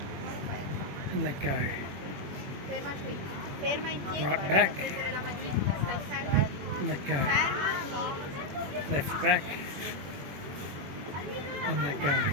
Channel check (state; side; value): late; left; 21 ms